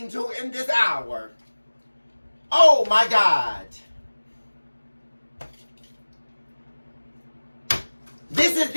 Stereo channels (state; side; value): inverted; both; correlation -1.00